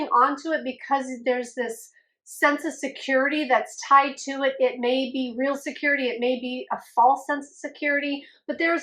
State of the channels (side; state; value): both; identical; correlation 1.00